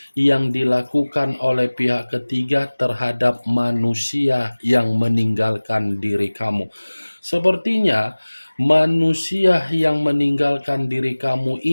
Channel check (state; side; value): inverted; both; correlation -1.00